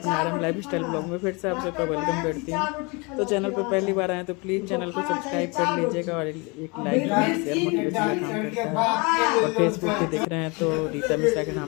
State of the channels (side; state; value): right; quieter; 28.9 dB